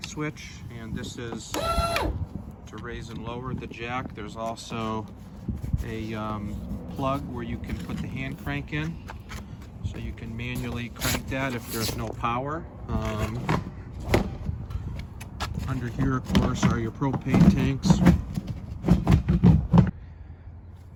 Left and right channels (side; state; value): both; identical; correlation 1.00